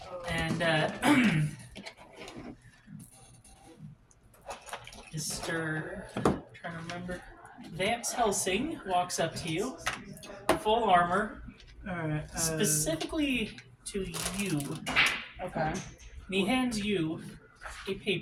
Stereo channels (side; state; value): both; identical; correlation 1.00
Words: And, Mr. trying to remember. Vance Helsing walks up to you, full armor, Alright, specifically to you. Okay. And he hands you a